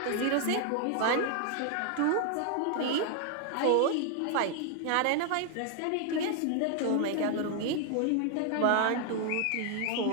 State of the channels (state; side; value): different; both; correlation 0.00